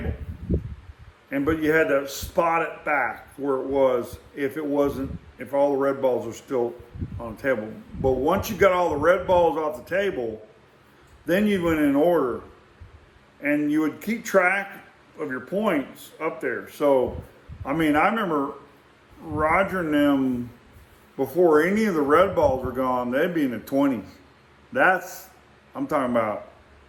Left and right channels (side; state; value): both; identical; correlation 1.00